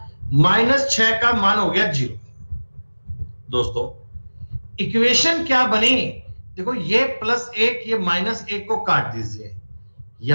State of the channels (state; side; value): inverted; both; correlation -1.00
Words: -6 का मान हो गया 0। दोस्तों इक्वेशन क्या बनी, देखो ये +1 ये -1 को काट दीजिए,